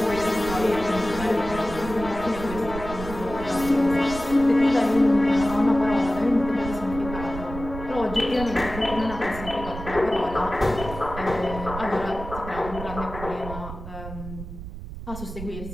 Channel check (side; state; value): right; noise; rumble, 10 dB below the sound